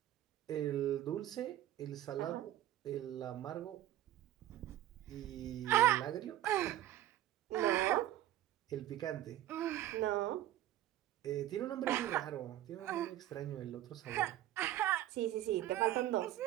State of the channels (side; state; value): left; quieter; 13.5 dB